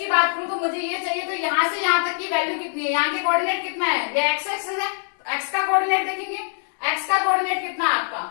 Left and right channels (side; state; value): right; silent; digital silence